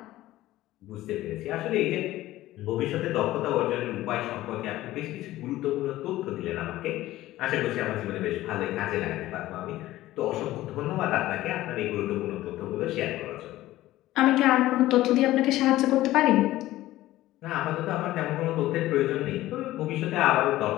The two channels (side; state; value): right; quieter; 15.8 dB